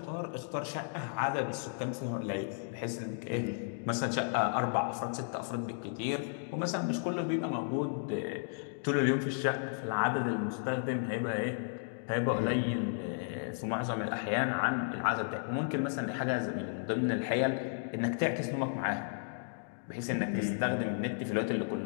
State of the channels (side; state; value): right; silent; digital silence